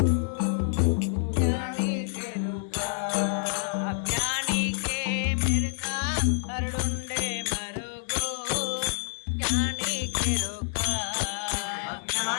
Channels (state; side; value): silent; right; 59 dB below the other